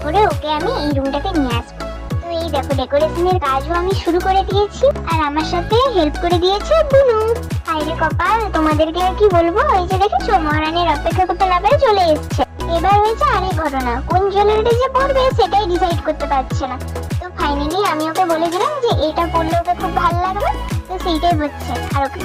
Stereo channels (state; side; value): identical; both; correlation 1.00